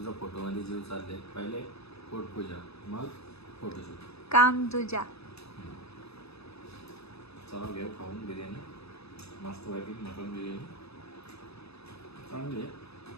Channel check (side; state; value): right; late; 0.79 ms